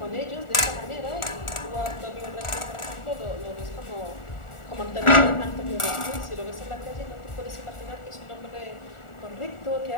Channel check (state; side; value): late; right; 1.4 ms